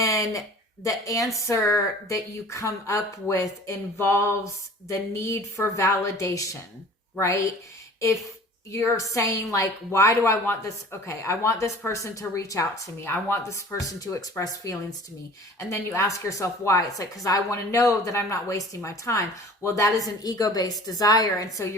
the answer that you come up with involves the need for validation, right? If you're saying like, why do I want this? Okay, I want this person to reach out to me. I want this person to express feelings to me. And then you ask yourself why. It's like, because I want to know that I'm not wasting my time. Well, that is an ego-based desire. And so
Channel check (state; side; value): normal; both; correlation 0.45